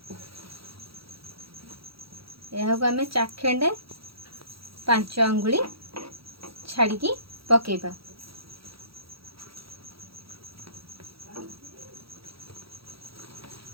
यह को आमे चाखेंडे 5 अंगुली छाड़ी पकेबा।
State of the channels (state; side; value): late; left; 0.76 ms